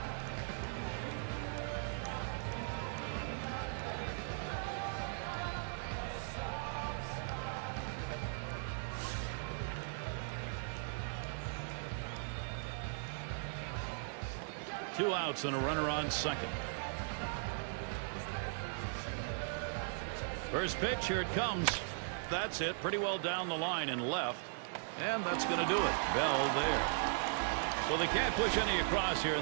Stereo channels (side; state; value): left; silent; 52 dB below the other